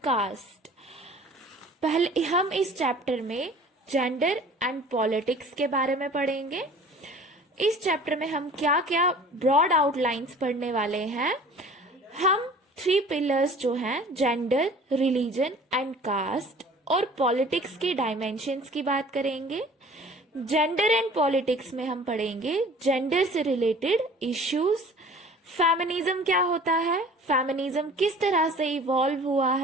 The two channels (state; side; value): normal; both; correlation 0.47